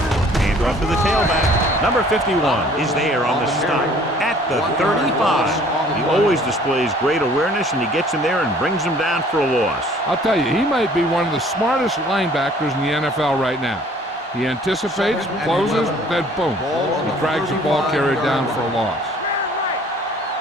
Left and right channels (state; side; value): normal; both; correlation 0.55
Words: Hand off to the tailback. Number 51 is there on the stop at the 35. He always displays great awareness, and he gets in there and brings him down for a loss. I'll tell you, he might be one of the smartest linebackers in the NFL right now. He anticipates, closes, then boom, he drags the ball carrier down for a loss.